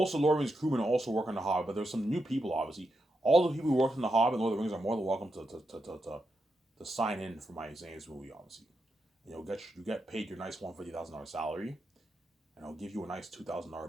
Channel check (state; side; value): normal; both; correlation 0.85